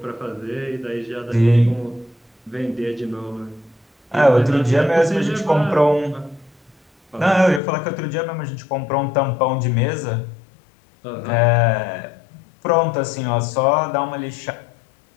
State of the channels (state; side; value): drops out; right; at 7.6 s